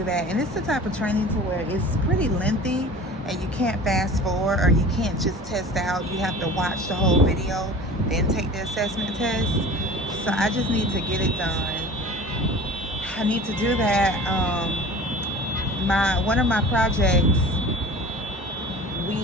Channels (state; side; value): normal; both; correlation 0.40